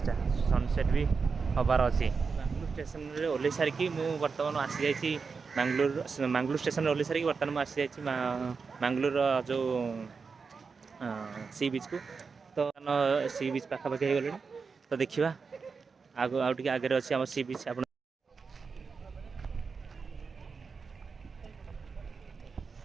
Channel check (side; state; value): left; quieter; 5.1 dB